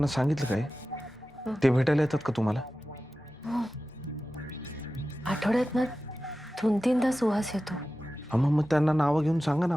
सांगितलं काय? ते भेटायला येतात का तुम्हाला? आठवड्यात ना 2-3दा सुहास येतो. हा, मग त्यांना नावं घेऊन सांगा ना,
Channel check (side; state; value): both; normal; correlation 0.94